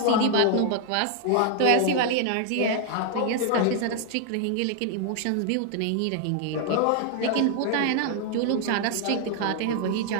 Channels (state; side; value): different; both; correlation 0.00